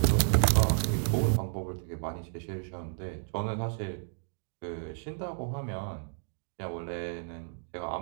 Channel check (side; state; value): left; silent; digital silence